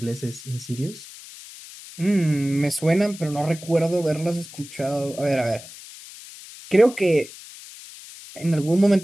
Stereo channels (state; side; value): noise; left; hiss, 16 dB below the sound